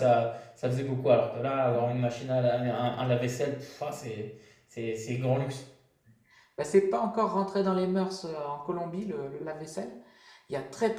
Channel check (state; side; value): identical; both; correlation 1.00